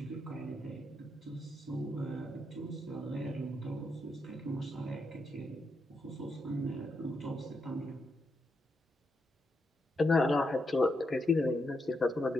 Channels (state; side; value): normal; both; correlation 0.82